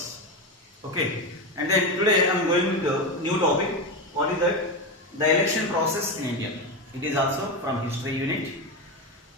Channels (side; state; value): both; normal; correlation 0.15